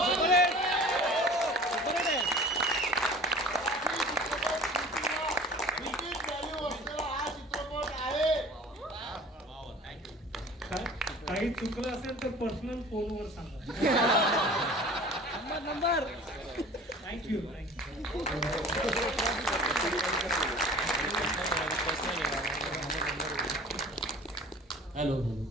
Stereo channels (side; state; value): both; normal; correlation 0.44